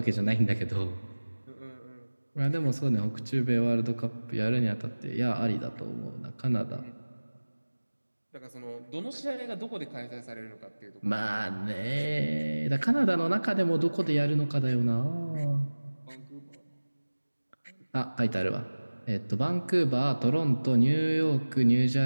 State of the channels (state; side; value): inverted; both; correlation -1.00